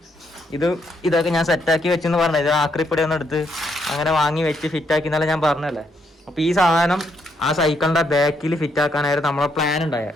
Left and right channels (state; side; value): normal; both; correlation 0.75